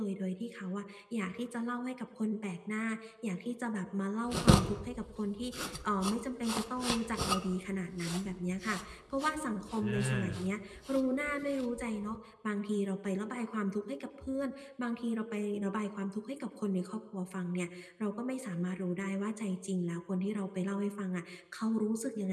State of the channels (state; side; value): identical; both; correlation 1.00